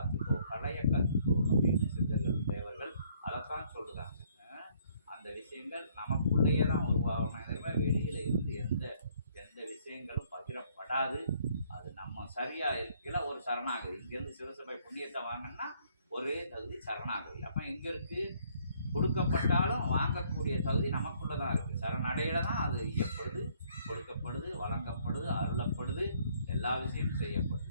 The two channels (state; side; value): inverted; both; correlation -0.64